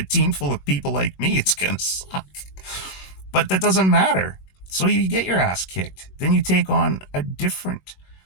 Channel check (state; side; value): late; right; 21 ms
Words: team full of people like me, it's going to suck. But that doesn't matter. So you get your ass kicked. Then you take on a different